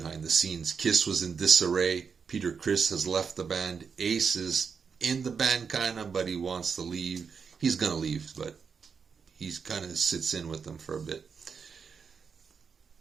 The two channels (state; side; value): quieter; left; 6.0 dB